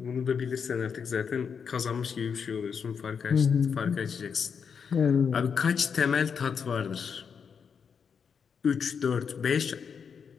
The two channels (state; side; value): quieter; right; 6.5 dB